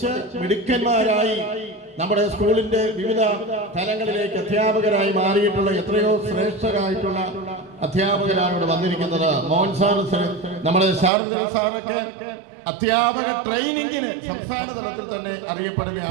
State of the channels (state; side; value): drops out; left; at 11.1 s